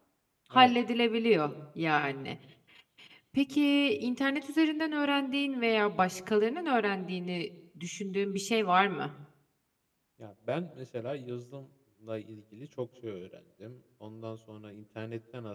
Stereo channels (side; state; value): both; identical; correlation 1.00